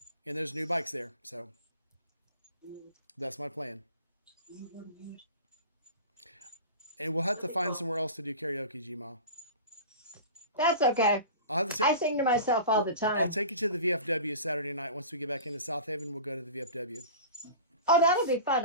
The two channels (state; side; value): inverted; both; correlation -0.35